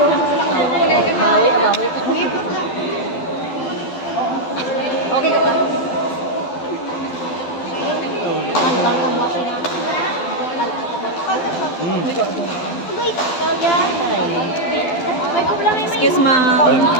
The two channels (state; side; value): late; right; 12 ms